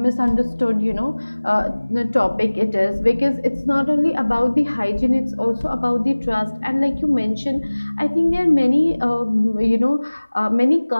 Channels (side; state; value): both; inverted; correlation -1.00